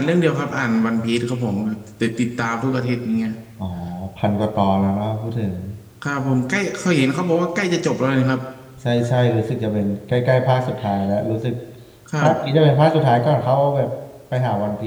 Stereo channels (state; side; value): identical; both; correlation 1.00